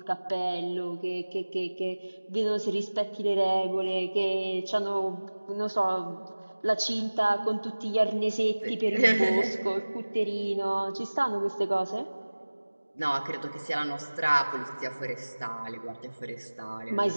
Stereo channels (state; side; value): inverted; both; correlation -1.00